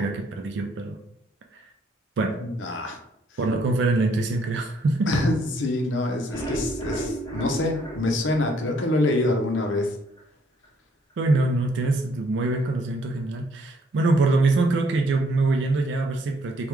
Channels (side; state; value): both; normal; correlation 0.67